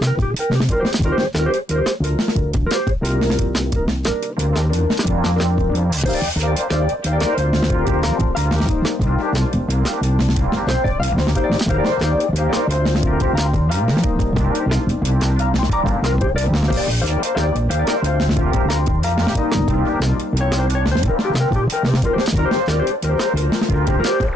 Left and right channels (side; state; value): both; normal; correlation 0.81